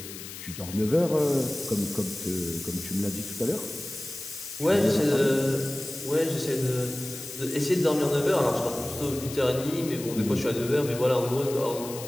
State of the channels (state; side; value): noise; left; hiss, 12 dB below the sound